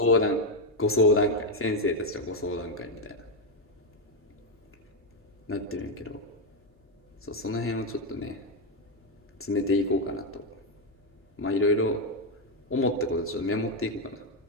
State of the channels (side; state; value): both; normal; correlation 0.04